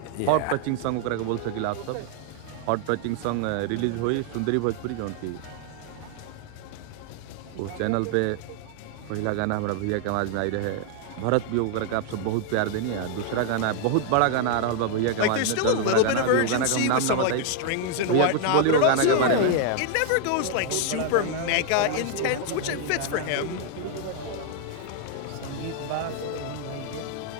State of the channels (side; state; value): both; different; correlation 0.00